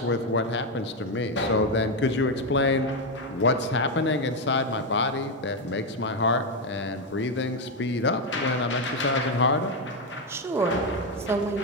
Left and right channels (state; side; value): normal; both; correlation 0.07